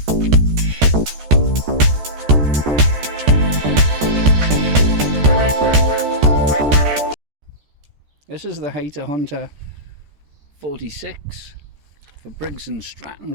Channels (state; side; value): late; left; 14 ms